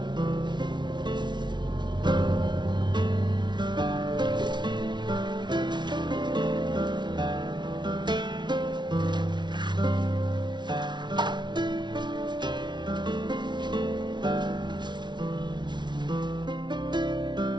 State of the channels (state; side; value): late; left; 0.22 ms